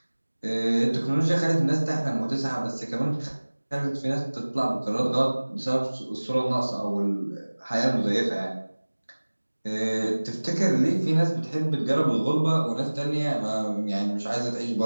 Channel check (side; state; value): both; inverted; correlation -1.00